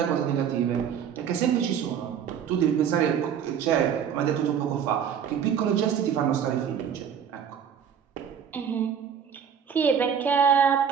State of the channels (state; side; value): quieter; left; 8.0 dB